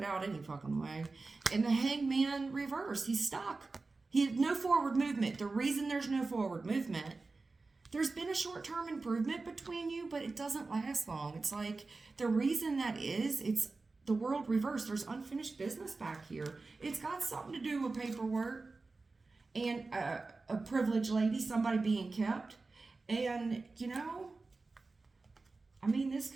out any fucking way. And the Hangman reverse. He's stuck. He had no forward movement. The reason there's no forward movement, there's been a short-term improvement between you, but it doesn't last long. It's like the reason that is, it's the world reversed. There's unfinished business back here. It's got something to do with paperwork and a privileged lady, somebody being kept. And, you know, I mean, this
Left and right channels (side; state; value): left; quieter; 3.7 dB